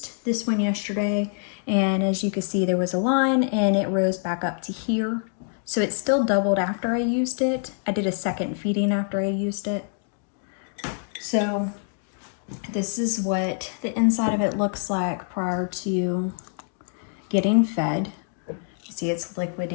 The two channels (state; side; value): silent; right; 59 dB below the other